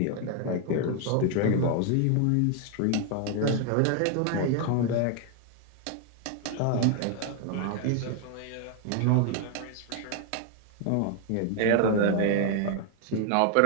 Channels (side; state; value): both; different; correlation 0.01